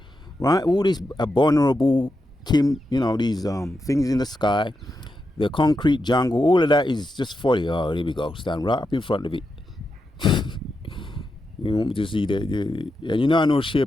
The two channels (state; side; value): normal; both; correlation 0.87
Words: right? All this abominable these things in the sky, the concrete jungle, all of that is just folly. Oh, here we go. Stand right up in front of it. You want me to see that? And I know